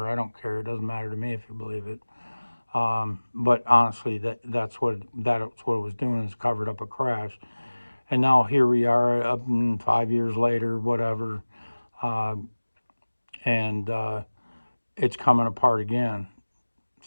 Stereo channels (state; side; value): inverted; both; correlation -1.00